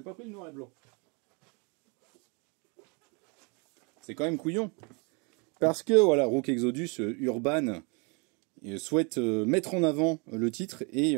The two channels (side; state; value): left; quieter; 32.4 dB